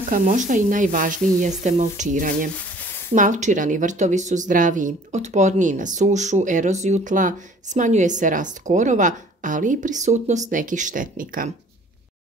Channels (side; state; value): both; normal; correlation 0.53